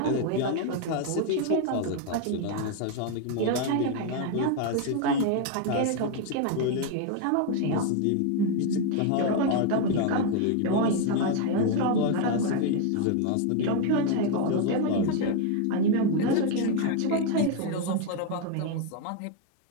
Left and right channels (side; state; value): both; different; correlation 0.01